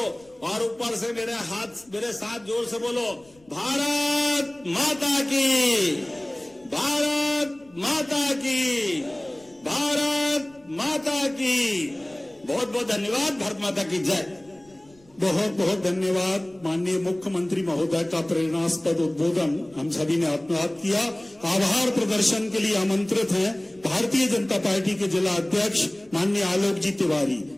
और ऊपर से मेरे हाथ मेरे साथ जोर से बोलो, भारत माता की, भारत माता की, भारत माता की। बहुत बहुत धन्यवाद। भारत माता की जय। बहुत बहुत धन्यवाद। माननीय मुख्यमंत्री महोदय का प्रेरणास्पद उद्बोधन हम सभी ने आत्मसात किया। आभार प्रदर्शन के लिए आमंत्रित हैं भारतीय जनता पार्टी के जिला अध्यक्ष माननीय आलोक जी तिवारी।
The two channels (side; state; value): left; noise; rumble, 30 dB below the sound